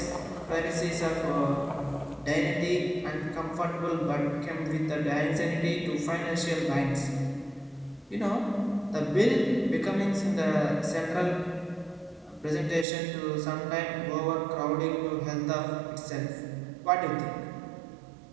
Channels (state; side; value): drops out; left; at 12.9 s